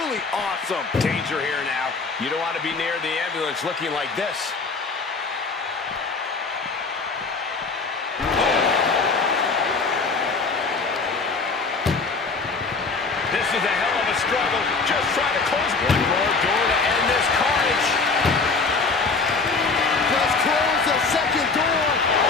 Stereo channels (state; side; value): quieter; right; 4.3 dB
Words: awesome. Danger here now. You don't want to be near the ambulance looking like this. This is a hell of a struggle. Just trying to close one more door to end this carnage. Just close the second door.